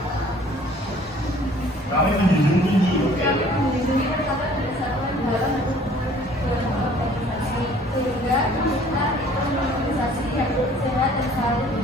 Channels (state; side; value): normal; both; correlation 0.54